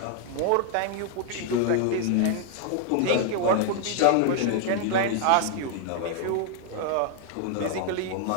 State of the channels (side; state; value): both; different; correlation 0.00